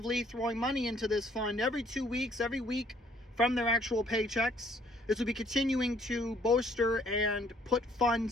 throwing money into this fund every 2 weeks, every week from their actual paychecks. This will be continuing to bolster and put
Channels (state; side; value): normal; both; correlation 0.62